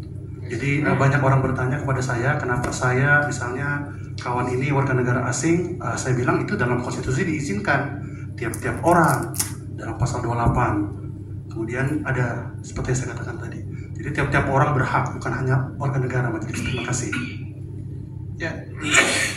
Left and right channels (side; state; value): both; identical; correlation 1.00